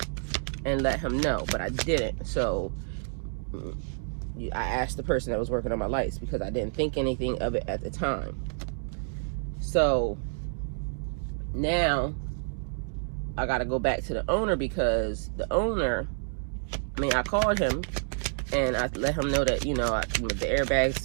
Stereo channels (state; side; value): silent; left; digital silence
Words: and let him know, but I didn't. So I asked the person that was working on my lights, because I didn't think anything of it at the time. So now I got to go back to the owner, because the owner, I called him and I let him know that, you know, the